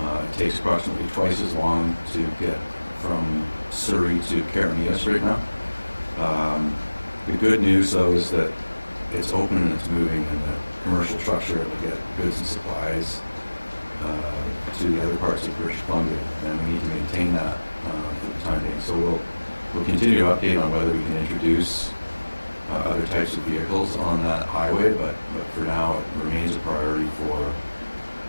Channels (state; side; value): inverted; both; correlation -1.00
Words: It takes approximately twice as long to get from Surrey to Carignan right now. The good news, though, is that it's open and it's moving, and the commercial trucks are able to get goods and supplies to the other parts of British Columbia, and we need to maintain that for the time being. So we'll continue to update on whether we can introduce other types of vehicles on that highway, but for now it remains a priority for